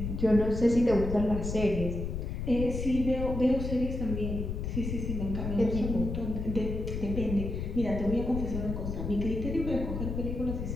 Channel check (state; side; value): noise; left; rumble, 4 dB below the sound